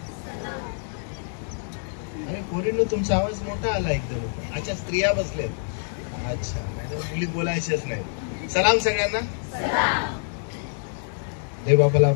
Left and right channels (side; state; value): right; silent; 61 dB below the other